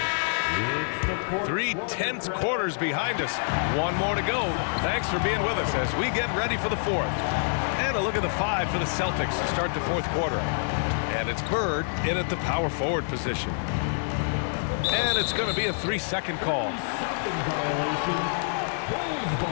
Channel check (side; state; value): right; silent; digital silence